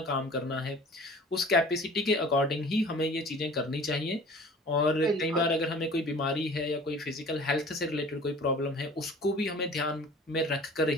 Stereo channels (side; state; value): both; normal; correlation 0.45